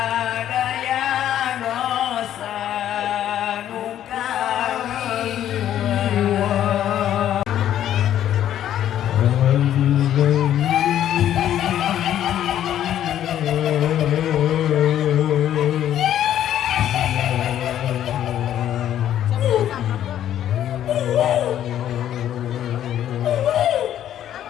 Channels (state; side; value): quieter; right; 11.2 dB